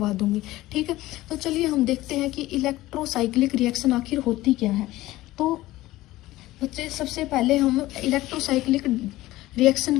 दूंगी। ठीक है, तो चलिए हम देखते हैं कि इलेक्ट्रोसाइक्लिक रिएक्शन आखिर होती क्या है। तो बच्चे सबसे पहले हम इलेक्ट्रोसाइक्लिक रिएक्शन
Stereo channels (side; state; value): right; quieter; 17.1 dB